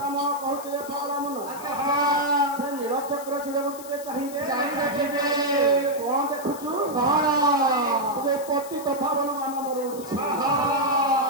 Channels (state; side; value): noise; left; hiss, 16 dB below the sound